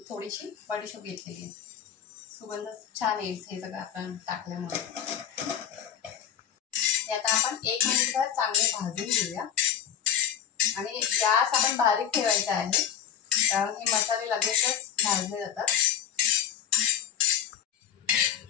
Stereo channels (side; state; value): right; quieter; 9.5 dB